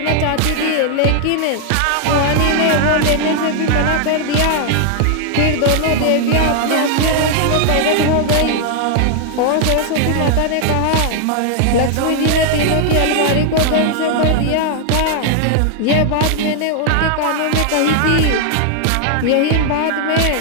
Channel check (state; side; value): different; both; correlation 0.00